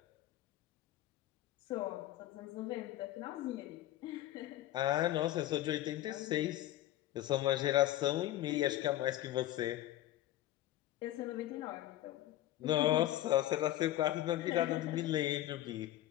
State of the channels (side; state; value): right; quieter; 14.3 dB